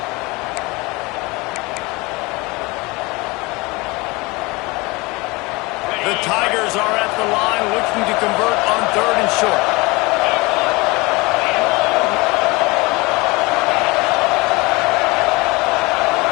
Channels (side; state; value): right; quieter; 24.5 dB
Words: The Tigers are at the line looking to convert on third and short.